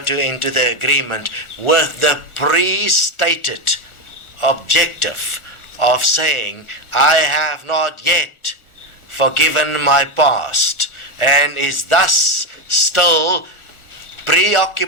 the agreement with the pre-stated objective of saying, I have not yet forgiven my past, and is thus still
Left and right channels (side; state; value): right; late; 1.4 ms